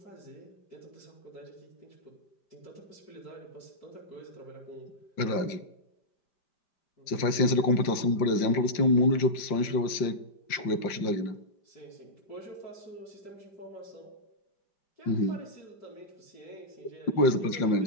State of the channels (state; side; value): late; right; 5.6 ms